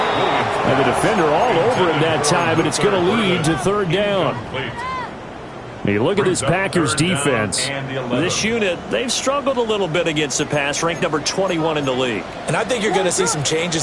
And the defender all over him that time, but it's going to lead to third down. You look at this Packers defense. This unit, they've struggled a little bit against the pass, ranked number 21 in the league. And I think you're going to see some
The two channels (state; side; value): identical; both; correlation 1.00